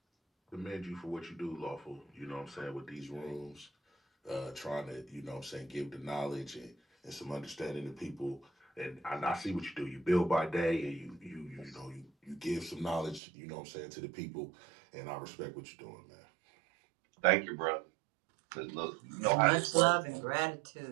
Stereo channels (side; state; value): left; drops out; at 13.2 s